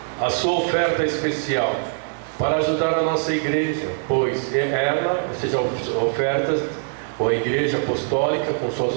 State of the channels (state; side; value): silent; left; 58 dB below the other